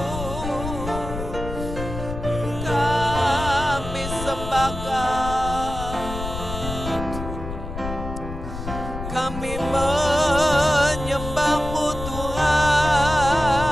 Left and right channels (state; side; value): noise; left; rumble, 8 dB below the sound